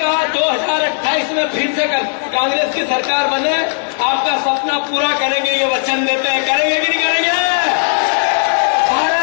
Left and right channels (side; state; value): right; silent; digital silence